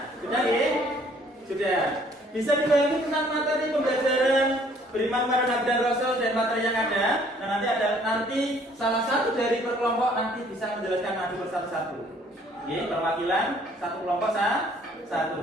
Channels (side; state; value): both; normal; correlation 0.60